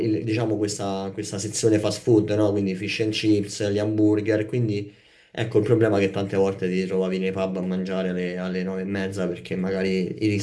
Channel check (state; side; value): identical; both; correlation 1.00